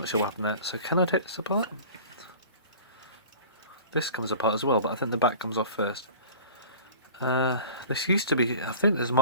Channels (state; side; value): inverted; both; correlation -0.42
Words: sure what happened there. So can I take this apart? This comes apart as well, but I think the back comes off first. This used to be, I think this